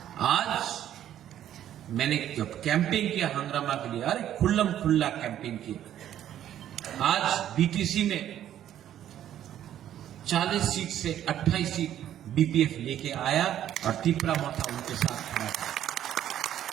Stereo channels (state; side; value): quieter; left; 11.2 dB